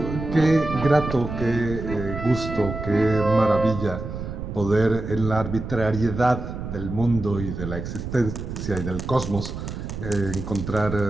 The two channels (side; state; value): right; noise; rumble, 7 dB below the sound